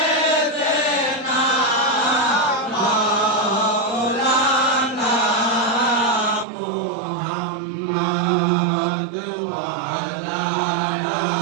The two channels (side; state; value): left; drops out; at 6.5 s